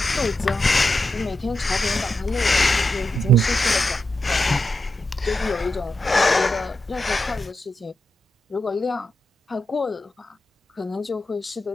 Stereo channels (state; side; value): normal; both; correlation 0.87